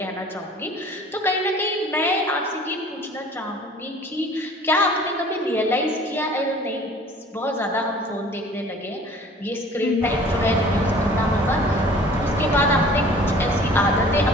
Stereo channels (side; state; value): both; normal; correlation 0.49